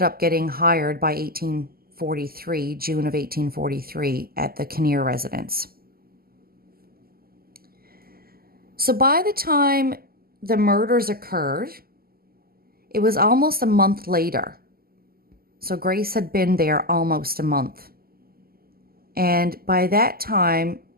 up getting hired by June of 1843, at the Kinnear residence. So by the time the murders occurred, it was almost a month later. So Grace had been there almost a month. And by that time,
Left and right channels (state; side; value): late; left; 0.43 ms